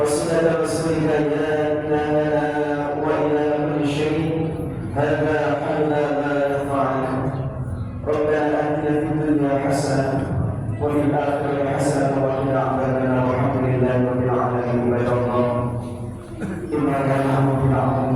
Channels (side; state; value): both; identical; correlation 1.00